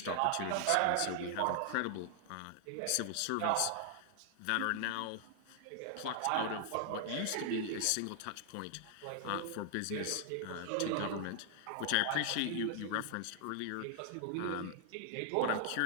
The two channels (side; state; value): both; different; correlation 0.00